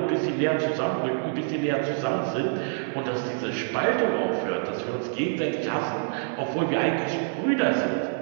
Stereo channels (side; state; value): left; silent; 61 dB below the other